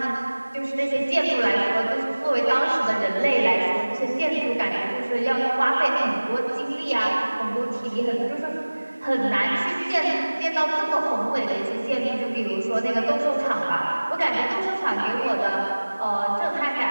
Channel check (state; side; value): inverted; both; correlation -1.00